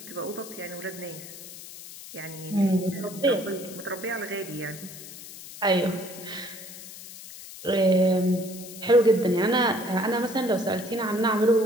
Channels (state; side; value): noise; left; hiss, 14 dB below the sound